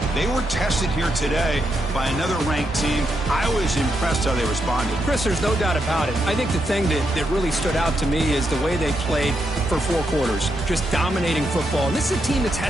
They were tested here today by another ranked team. I was impressed how they responded. Chris, there's no doubt about it. I think the thing that really stood out to me is the way they played for 4 quarters, just dominating football. And this is a team that's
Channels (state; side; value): normal; both; correlation 0.82